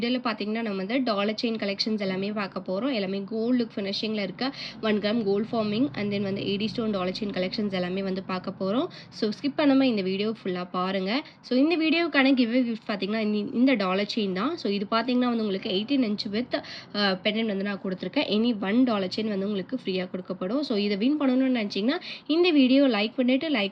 பார்த்தீங்கன்னா நம்ம வந்து டாலர் செயின் கலெக்ஷன்ஸ் எல்லாமே பார்க்க போகிறோம். எல்லாமே கோல்டு லுக் ஃபினிஷிங்கில் இருக்க 1 gram gold forming and then வந்து 80 ஸ்டோன் டாலர் செயின் கலெக்ஷன்ஸ் எல்லாமே வந்து பார்க்க போகிறோம். ஸோ ஸ்கிப் பண்ணாமல் இந்த வீடியோ ஃபுல்லாக பாருங்கள். ஸோ இந்த வீடியோக்கான கிஃப்ட் பார்த்தீங்கன்னா இந்த டாலர் செயின் தான். ஸோ இது பார்த்தீங்கன்னா வந்து உங்களுக்கு 18 இன்ச் வித் பெண்டன்ட் வந்து நான் கொடுத்துருக்கேன். எனி 1 டாலர் செயின் வந்து உங்களுக்கு ஃப்ரீயாக கொடுக்கப்படும். ஸோ இதை வின் பண்ணணும்னு நினச்சிங்கன்னா இந்த வீடியோ லைக் பண்ணிவிட்டு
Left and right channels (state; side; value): identical; both; correlation 1.00